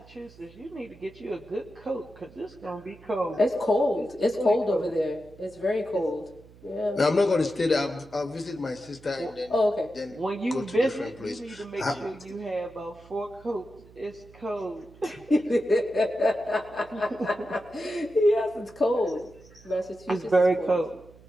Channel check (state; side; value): noise; right; hum, 23 dB below the sound